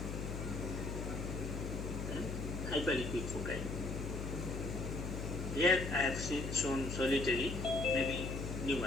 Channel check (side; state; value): left; noise; hum, 4 dB below the sound